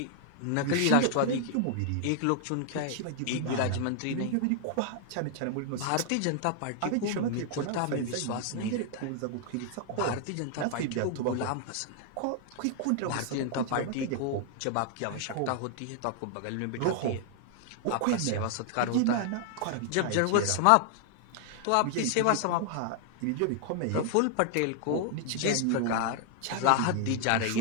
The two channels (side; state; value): both; different; correlation 0.00